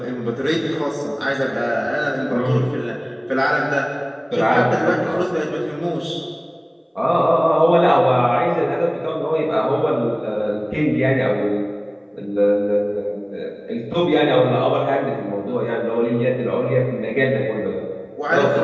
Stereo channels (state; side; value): identical; both; correlation 1.00